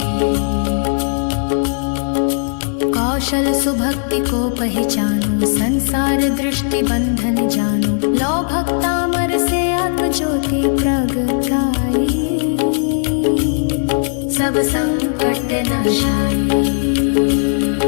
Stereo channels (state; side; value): silent; right; digital silence